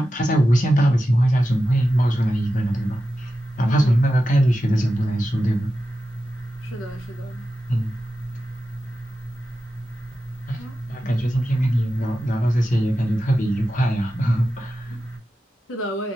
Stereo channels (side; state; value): both; normal; correlation 0.92